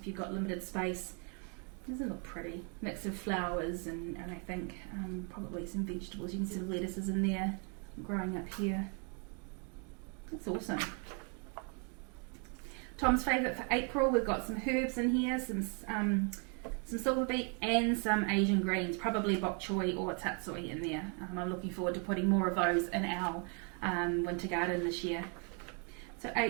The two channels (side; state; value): left; quieter; 38.4 dB